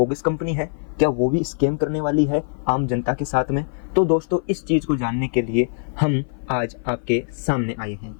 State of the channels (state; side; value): silent; right; 57 dB below the other